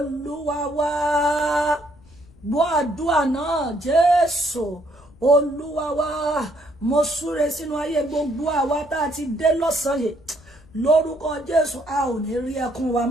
wá. Gbọ́ àdúrà náà, Jésù Olúwa wá. Mo súre sínú ayé gbogbo àwa tá a ti dé lọ́sàn-án yìí, lórúkọ Jésù, a ò ní rí ẹkún wa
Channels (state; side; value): noise; left; rumble, 26 dB below the sound